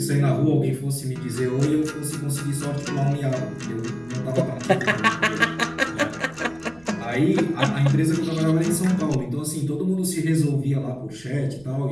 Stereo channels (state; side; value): noise; right; rumble, 26 dB below the sound